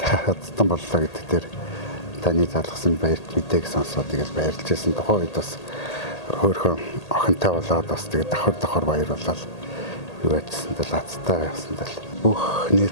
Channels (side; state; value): right; late; 1.8 ms